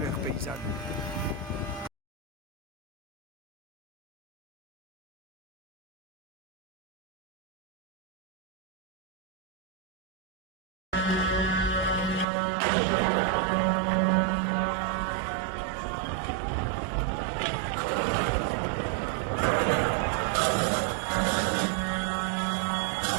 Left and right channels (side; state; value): left; drops out; at 12.2 s